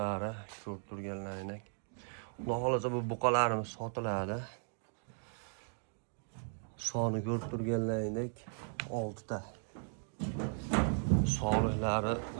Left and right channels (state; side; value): silent; left; 53 dB below the other